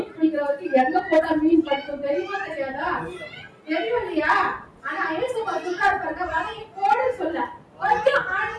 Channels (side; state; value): both; identical; correlation 1.00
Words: பிடிக்கிறவருக்கு எங்க போட்டா மீன் பிடிக்கும் தெரியுமா தெரியாதா? தெரியும் இல்லையா? ஆனா இயேசுவா சொல்றாரு பாருங்க, வலையை போடு சொல்ல, கொஞ்சம்